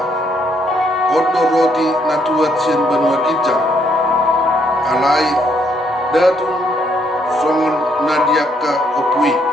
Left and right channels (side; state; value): both; normal; correlation 0.72